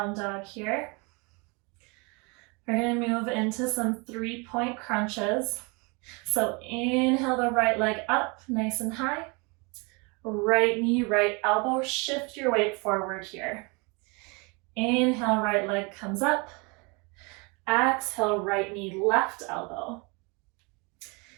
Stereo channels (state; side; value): quieter; left; 30.0 dB